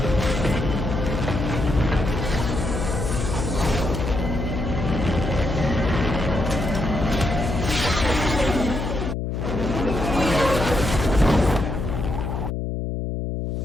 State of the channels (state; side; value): noise; left; hum, 3 dB below the sound